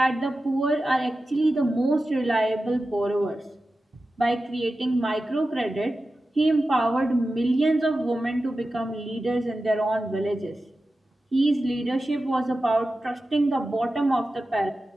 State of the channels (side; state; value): both; normal; correlation 0.93